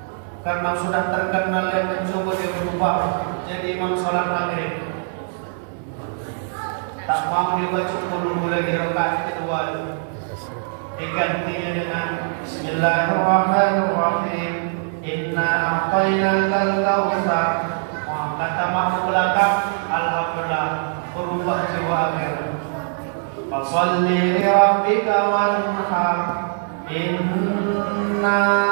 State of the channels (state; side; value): silent; left; digital silence